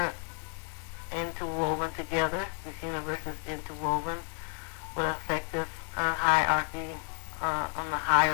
interwoven together. This universe is interwoven. What affects us hierarchy on the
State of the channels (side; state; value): right; quieter; 38.7 dB